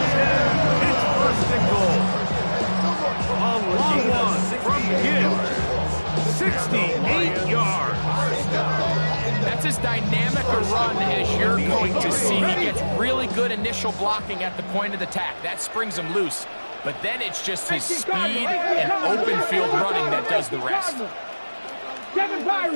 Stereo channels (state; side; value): inverted; both; correlation -1.00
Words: 10. It's first and goal. A long one from Gibbs. 68 yards. That's as dynamic a run as you're going to see. He gets really good initial blocking at the point of the attack. That springs him loose. But then it's just his speed and open field running that does the rest. Kevin